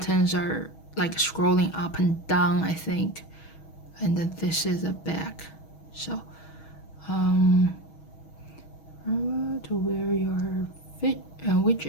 are like scrolling up and down, I think. And then this is the back. So to wear your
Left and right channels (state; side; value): late; right; 6.3 ms